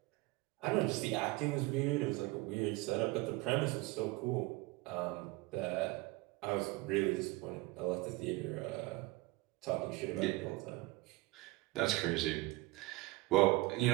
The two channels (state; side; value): quieter; left; 21.1 dB